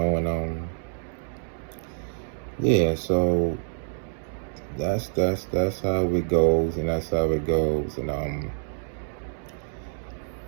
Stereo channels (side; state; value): left; silent; 60 dB below the other